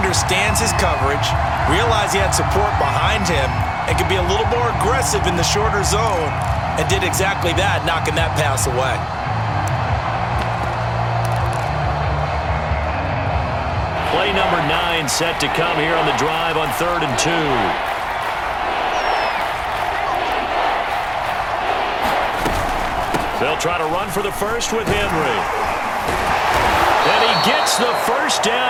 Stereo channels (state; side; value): identical; both; correlation 1.00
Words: his coverage, realized he had support behind him, and could be a little more aggressive in the shorter zone, and did exactly that, knocking that pass away. Play number 9 set to come here on the drive on 3rd and 2. They'll try to run for the first with Henry. And he gets the first